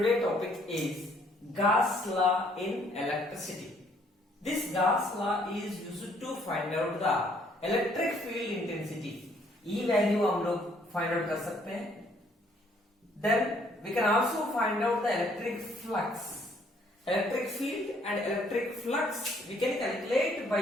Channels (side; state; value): both; normal; correlation 0.65